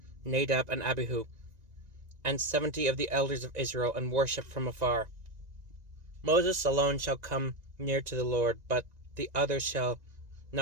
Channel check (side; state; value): left; late; 1.9 ms